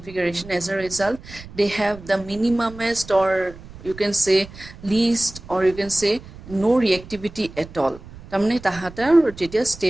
as a result they have the minimumest, or you can say least, or you can say no reactivity at all. তাৰমানে তাহাঁতৰ যেতিয়া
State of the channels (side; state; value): right; noise; rumble, 17 dB below the sound